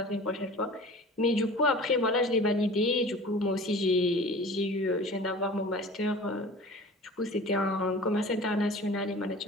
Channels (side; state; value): both; normal; correlation 0.41